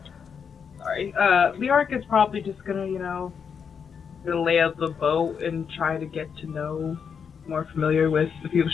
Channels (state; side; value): quieter; right; 6.7 dB